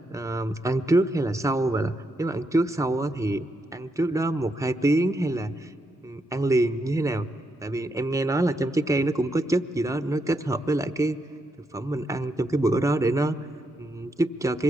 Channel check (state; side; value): normal; both; correlation 0.81